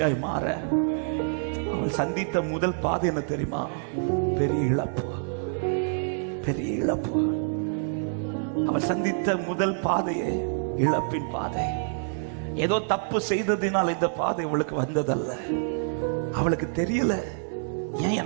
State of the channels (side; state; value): left; silent; 58 dB below the other